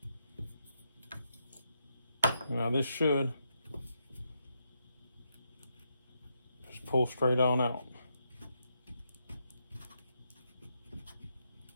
Now this should just pull straight on out.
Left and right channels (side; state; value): both; inverted; correlation -0.81